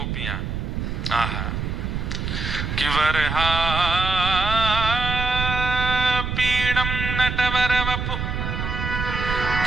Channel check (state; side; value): noise; right; rumble, 3 dB below the sound